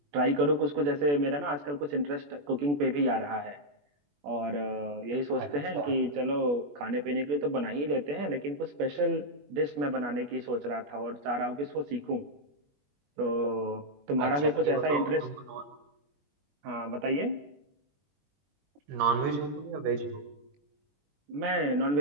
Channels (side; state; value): left; late; 21 ms